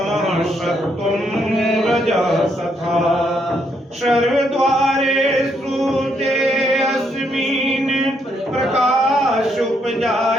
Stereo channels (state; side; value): normal; both; correlation 0.74